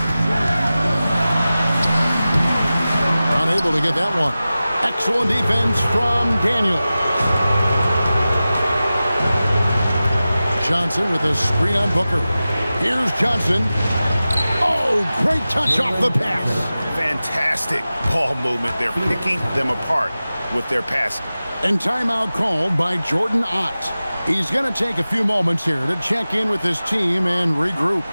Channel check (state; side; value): inverted; both; correlation -0.96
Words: Unable to get that one. Excellent defense from Daniel. Johnson with a screen on Booker. Here's Johnson. Oh, great touch off the pass. Fantastic ball movement. They're picking them apart with their passing. And timeout called by Jordan Ott. He's going to take a few moments here to check in with his team and regroup.